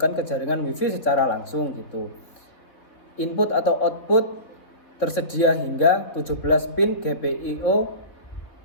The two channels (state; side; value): late; right; 3.7 ms